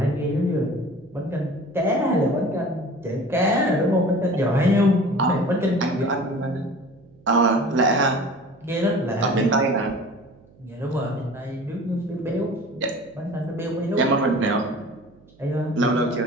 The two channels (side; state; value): right; noise; hum, 28 dB below the sound